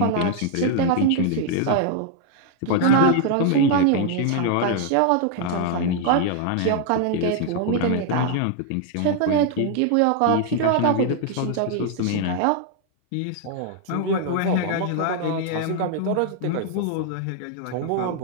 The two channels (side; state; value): both; different; correlation 0.00